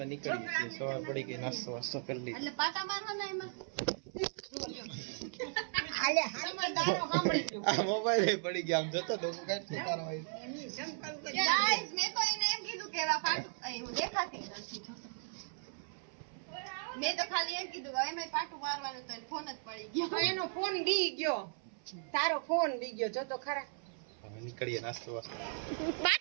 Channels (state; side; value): silent; left; 53 dB below the other